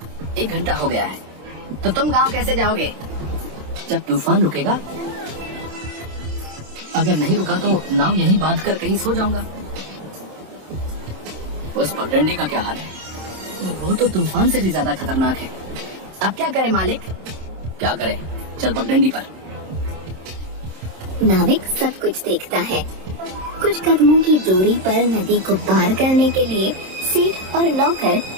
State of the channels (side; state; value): left; late; 27 ms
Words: 1 घंटा हो गया है। तो तुम गांव कैसे जाओगे? जब तूफान रुकेगा। अगर नहीं रुका तो नाव यहीं बांध कर कहीं सो जाऊंगा। उस पगडंडी का क्या हाल है? वो तो तूफान से भी ज्यादा खतरनाक है। अब क्या करें मालिक? क्या करें, चल पगडंडी पर। नाविक सब कुछ देखता है। कुछ कदमों की दूरी पर नदी को पार करने के लिए सेठ और नौकर